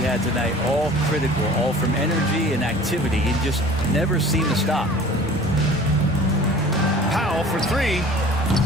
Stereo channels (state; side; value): normal; both; correlation 0.45